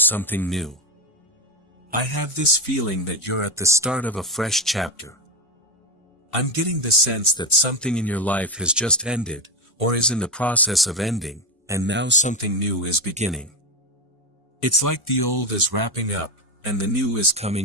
something new. I have this feeling that you're at the start of a fresh chapter. I'm getting the sense that something in your life has just ended, or is in the process of ending, and now something new is beginning. It's like the old is wrapping up, and the new is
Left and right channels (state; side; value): normal; both; correlation 0.12